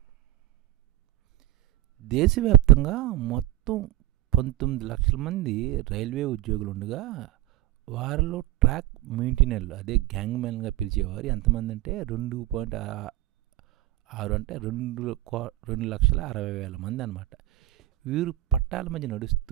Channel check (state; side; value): quieter; left; 15.3 dB